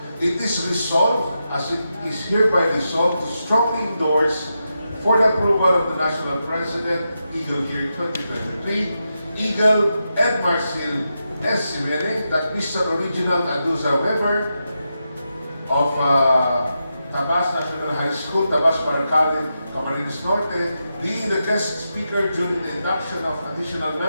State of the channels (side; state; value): both; inverted; correlation -0.87